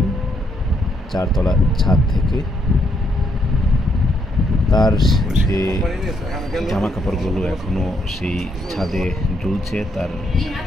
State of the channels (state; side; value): normal; both; correlation 0.74